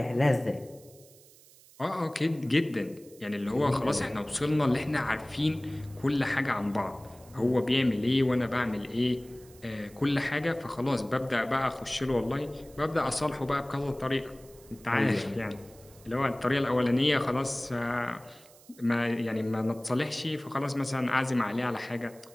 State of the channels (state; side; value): noise; right; hiss, 24 dB below the sound